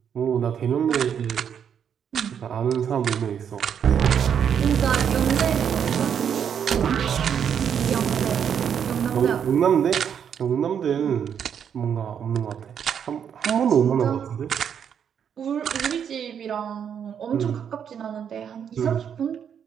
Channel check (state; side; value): quieter; left; 8.1 dB